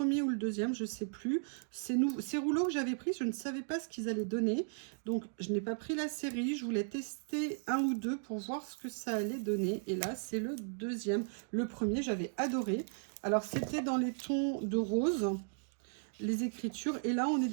ou le deuxième, je ne sais plus, ces rouleaux que j'avais pris, je ne savais pas ce qu'ils allaient donner. Donc, je n'ai pas pris la série, je voulais tester un ou deux pour voir ce que ça allait donner. Et là, c'est le deuxième. Le premier, j'avais adoré. Alors, c'était dans les tons de rose, les écritures. Et là, on est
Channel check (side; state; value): left; silent; digital silence